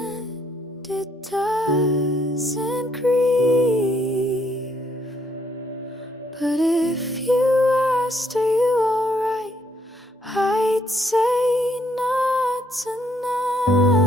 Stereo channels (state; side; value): normal; both; correlation 0.70